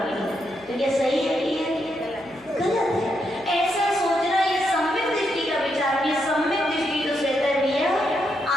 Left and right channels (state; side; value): noise; left; hum, 29 dB below the sound